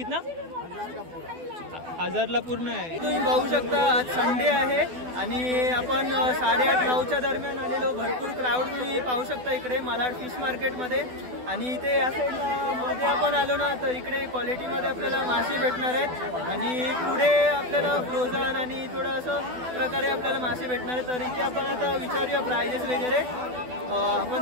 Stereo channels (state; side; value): late; left; 12 ms